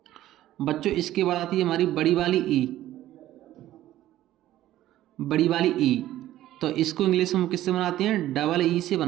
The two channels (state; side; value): quieter; left; 14.0 dB